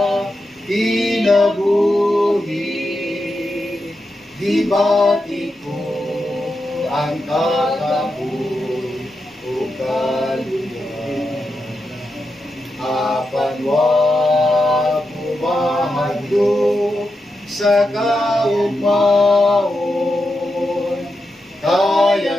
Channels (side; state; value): both; normal; correlation 0.87